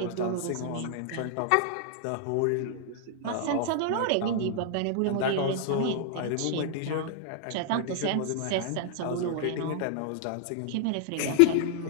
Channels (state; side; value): different; both; correlation -0.01